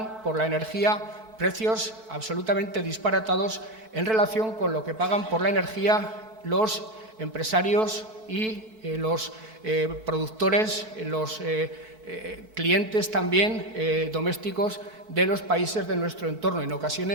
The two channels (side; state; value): left; late; 4.6 ms